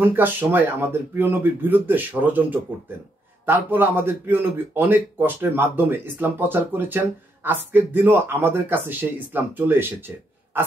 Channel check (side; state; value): both; normal; correlation 0.77